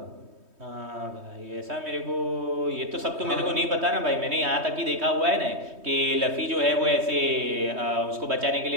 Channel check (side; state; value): left; late; 3.2 ms